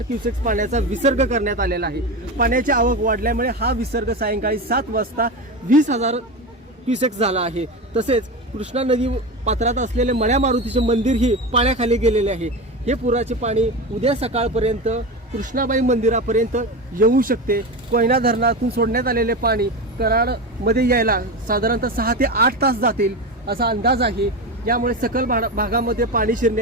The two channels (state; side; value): normal; both; correlation 0.21